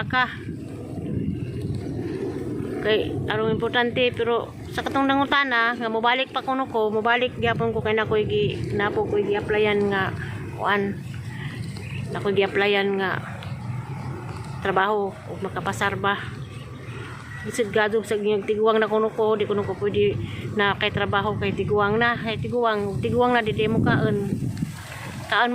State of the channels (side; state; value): both; identical; correlation 1.00